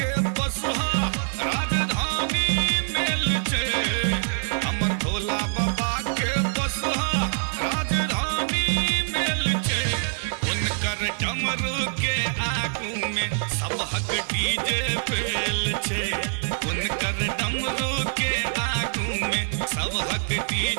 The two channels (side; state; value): left; silent; 56 dB below the other